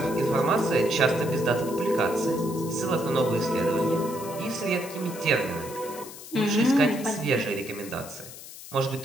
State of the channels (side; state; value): left; noise; hiss, 14 dB below the sound